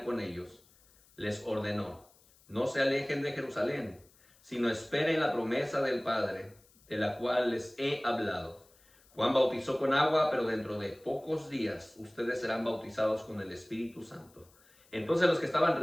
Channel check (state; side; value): noise; left; hiss, 29 dB below the sound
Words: con ellos, les ordenó: no se alejen de Jerusalén, sino esperen la promesa del Padre, de la cual les he hablado. Juan bautizó con agua, pero dentro de pocos días ustedes serán bautizados con el Espíritu Santo. Entonces los que estaban